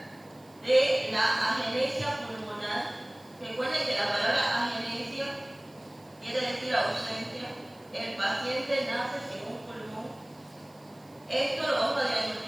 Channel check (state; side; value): noise; right; hiss, 29 dB below the sound